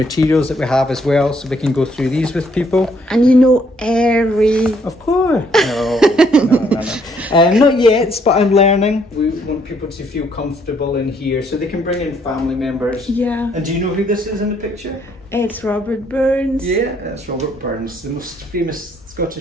that we have as well, so we can go through these with people. And you know every... Of course. No. Not yet, but I'm learning. We want people to feel comfortable in here, so they can bring in family members. Yeah. And do you know who this is in the picture? It's Robert Burns. Yeah, that's Robert Burns, the most famous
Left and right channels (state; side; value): normal; both; correlation 0.68